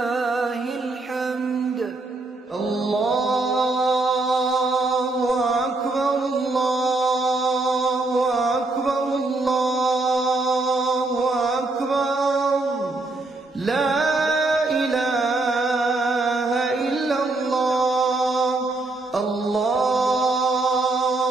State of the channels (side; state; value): left; quieter; 3.1 dB